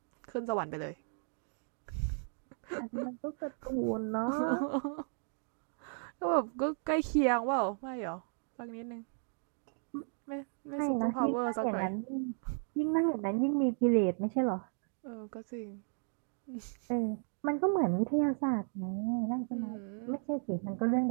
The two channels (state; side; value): silent; left; 54 dB below the other